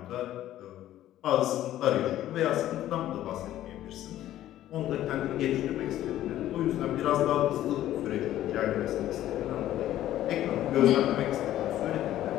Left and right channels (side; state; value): right; quieter; 13.1 dB